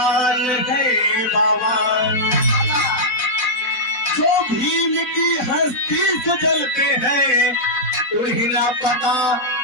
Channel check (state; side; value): late; right; 4.0 ms